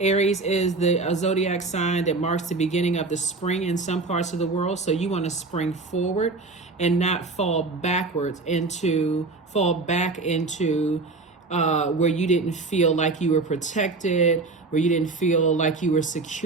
is the zodiac sign that marks the beginning of the spring in some parts of the world. So you want to spring forward and not fall back into where you didn't feel like you were protected, where you didn't feel like you were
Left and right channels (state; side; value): quieter; left; 3.7 dB